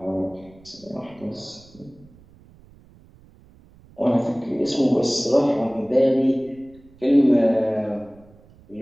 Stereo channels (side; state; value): right; noise; rumble, 26 dB below the sound